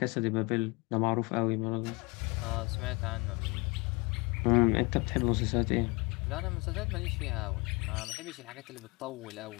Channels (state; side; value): quieter; right; 27.7 dB